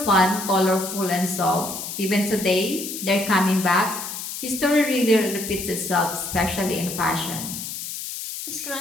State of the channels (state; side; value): noise; left; hiss, 7 dB below the sound